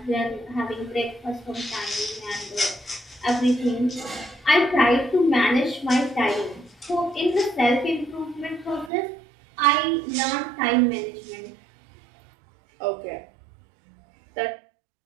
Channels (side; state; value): left; drops out; at 8.9 s